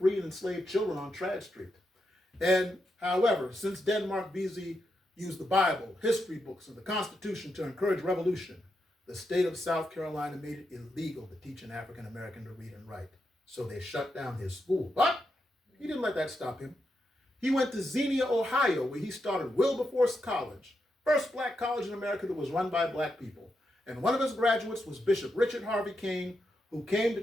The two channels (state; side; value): normal; both; correlation 0.84